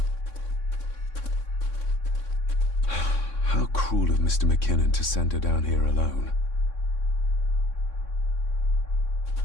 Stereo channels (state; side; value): late; right; 3.6 ms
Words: How cruel of Mr. McKinnon to send her down here alone.